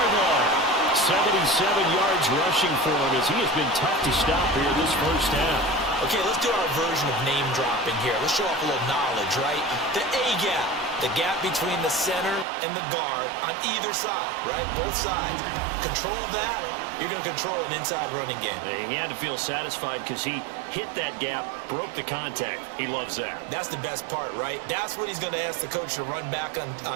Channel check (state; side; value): drops out; left; at 12.5 s